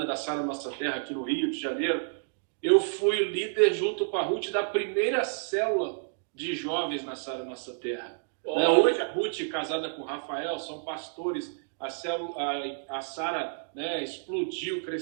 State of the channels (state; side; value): silent; left; digital silence